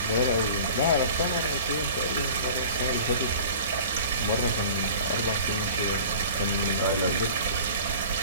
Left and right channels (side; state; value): both; inverted; correlation -0.42